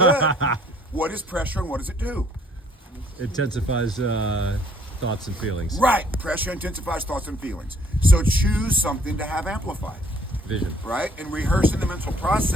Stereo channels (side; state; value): both; normal; correlation 0.61